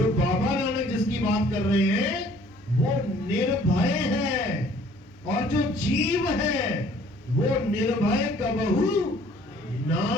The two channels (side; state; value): both; normal; correlation 0.56